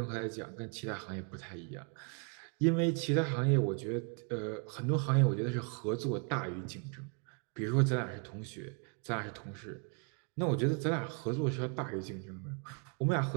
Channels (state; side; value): quieter; left; 38.0 dB